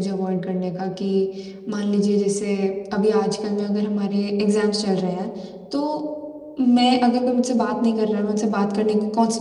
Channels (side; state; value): both; identical; correlation 1.00